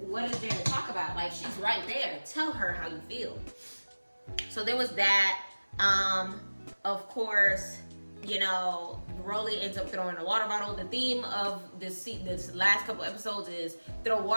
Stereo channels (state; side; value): inverted; both; correlation -1.00